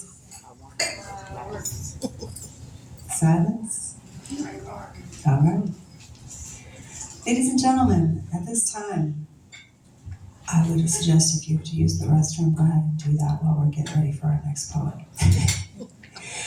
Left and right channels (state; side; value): identical; both; correlation 1.00